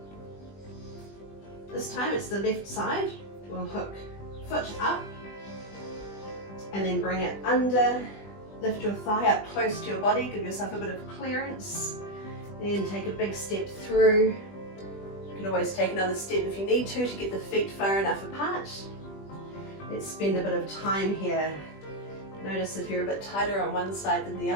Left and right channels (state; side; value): late; right; 20 ms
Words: This time it's the left side. We'll hook foot up. And then bring it under. Lift your thigh up close to your body. Give yourself a bit of clearance. Then take a big step through. You can always take another step if you need to get the feet far enough apart. Let's spend a bit of time here. Notice if you're a bit tighter on one side than the